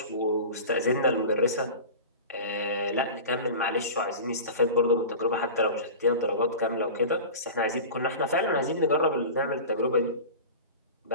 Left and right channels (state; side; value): inverted; both; correlation -0.33